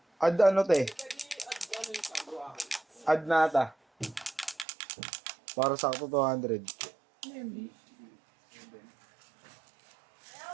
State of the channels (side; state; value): left; drops out; at 4.7 s